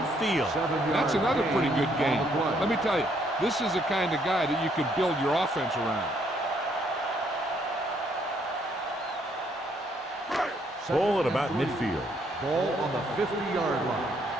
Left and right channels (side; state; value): both; normal; correlation 0.69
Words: That's another pretty good game. Let me tell you, this is the kind of guy that you can build your offense around. Ball at about midfield. Ball on the 50-yard line.